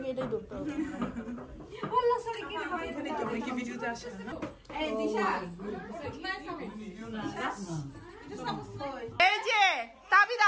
এটাই ধরতে হবে। এই যে তাবিদ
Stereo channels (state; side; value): identical; both; correlation 1.00